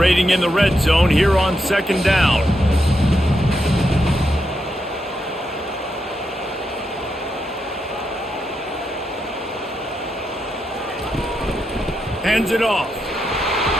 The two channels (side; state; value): both; normal; correlation 0.83